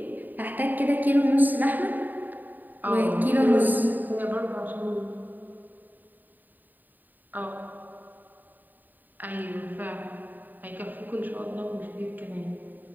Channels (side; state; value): left; late; 0.088 ms